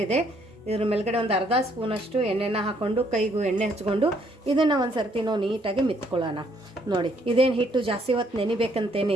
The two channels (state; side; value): normal; both; correlation 0.68